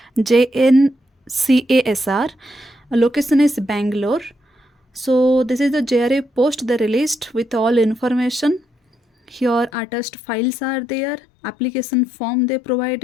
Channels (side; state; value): right; drops out; at 9.7 s